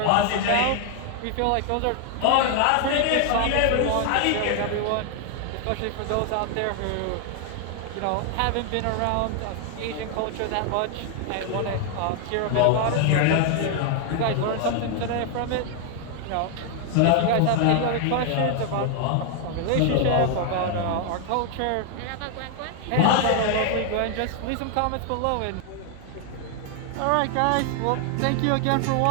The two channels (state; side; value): different; both; correlation 0.00